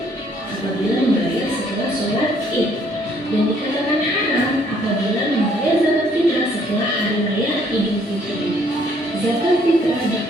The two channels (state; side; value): normal; both; correlation 0.65